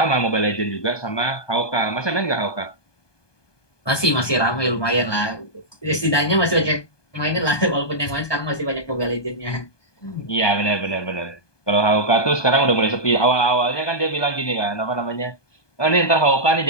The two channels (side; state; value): right; late; 1.2 ms